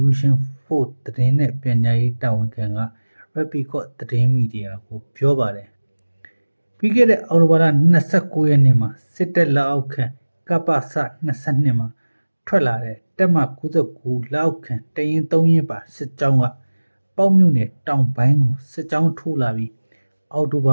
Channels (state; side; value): inverted; both; correlation -1.00